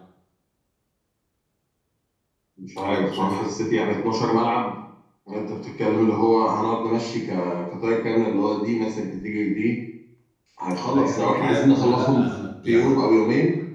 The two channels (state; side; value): identical; both; correlation 1.00